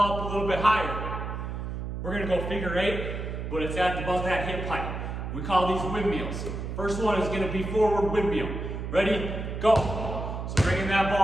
up a little bit higher, we're going to go figure 8, but it's at about that hip height. We call these windmills. First one is going to be forward windmill. Ready? Go. So bringing that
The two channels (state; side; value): noise; right; hum, 5 dB below the sound